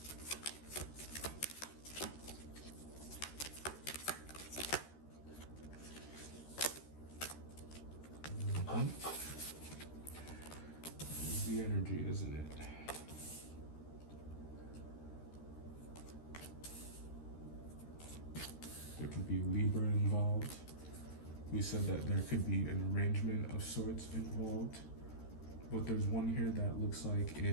The energy, isn't it? There could be Libra involved. We said that there could be an arrangement of sorts involved, but there's one here that looks like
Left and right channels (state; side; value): late; right; 13 ms